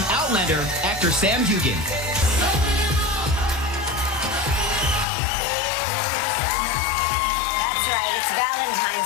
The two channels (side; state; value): right; drops out; at 5.1 s